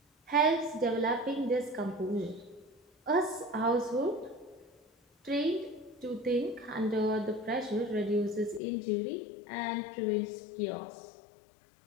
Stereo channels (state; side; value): drops out; right; at 8.6 s